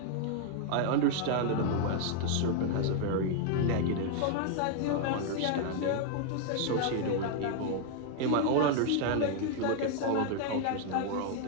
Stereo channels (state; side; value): different; both; correlation 0.00